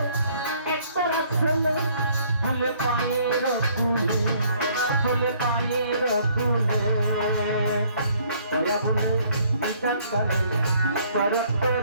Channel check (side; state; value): both; inverted; correlation -0.62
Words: ফুলে ফুলে পায়ের ফুলে ফুলে পায়ের ফুলে দয়া বলে বিধান করে করত